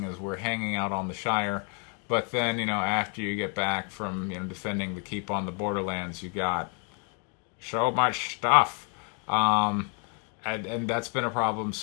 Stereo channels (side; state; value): right; quieter; 39.2 dB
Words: as we're hanging out on the Shire. But then after you get back from defending the keep on the Borderlands, you got so much stuff. And that's been a problem